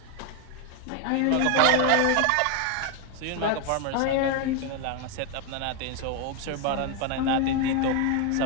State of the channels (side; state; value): both; different; correlation 0.01